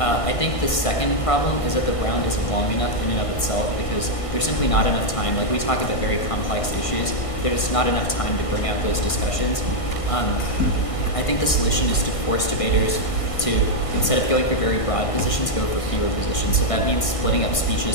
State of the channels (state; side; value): late; right; 1.5 ms